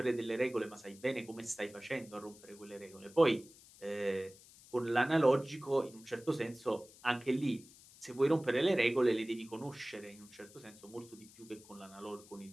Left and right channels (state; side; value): noise; left; hiss, 22 dB below the sound